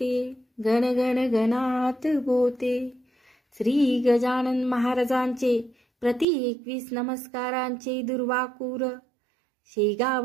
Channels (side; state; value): left; drops out; at 6.2 s